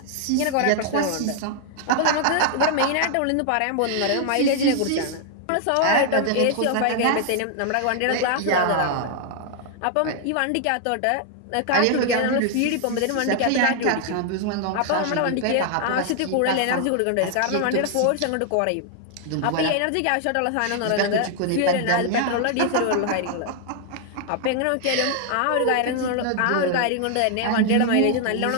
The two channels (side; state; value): both; different; correlation 0.00